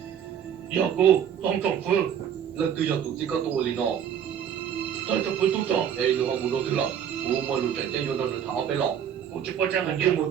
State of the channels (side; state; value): left; quieter; 8.8 dB